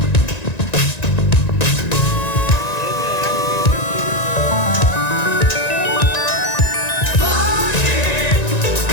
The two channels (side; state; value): right; late; 1.9 ms